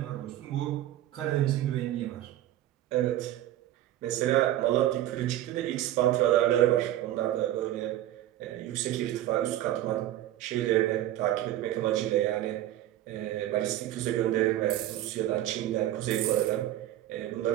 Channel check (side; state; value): left; quieter; 13.5 dB